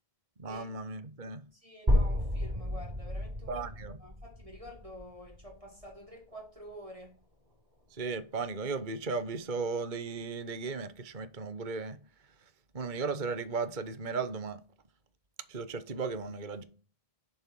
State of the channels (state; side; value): late; left; 2.2 ms